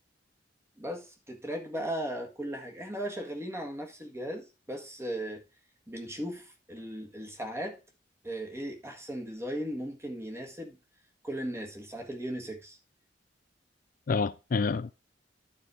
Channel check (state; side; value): normal; both; correlation 0.59